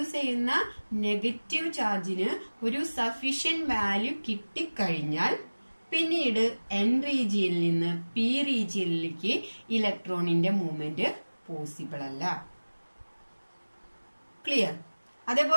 ചെയ്യുന്ന നെഗറ്റീവ് ചാർജിന് ഒരു സഫീഷ്യന്റ് വാല്യൂ കിട്ടിക്കഴിഞ്ഞാൽ പിന്നീട് N റീജിയനിൽ നിന്ന് P റീജിയനിലേക്ക് ഇലക്ട്രോണിന്റെ മൂവ്മെന്റ് പോസിബിൾ അല്ല. ക്ലിയർ?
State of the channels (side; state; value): both; inverted; correlation -1.00